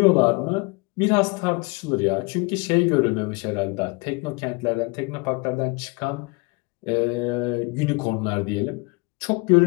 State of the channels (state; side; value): quieter; right; 28.0 dB